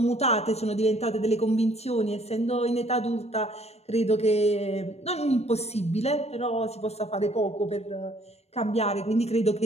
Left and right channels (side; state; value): right; late; 0.31 ms